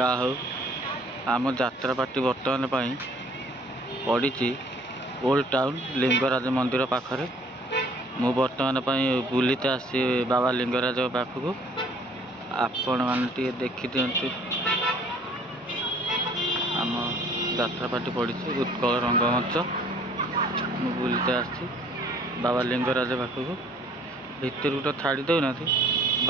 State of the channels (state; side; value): normal; both; correlation 0.57